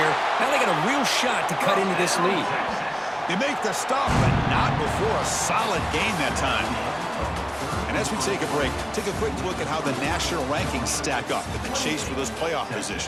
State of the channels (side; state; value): both; identical; correlation 1.00